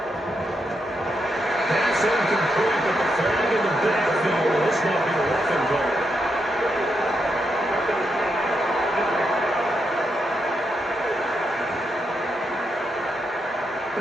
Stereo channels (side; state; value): both; normal; correlation 0.82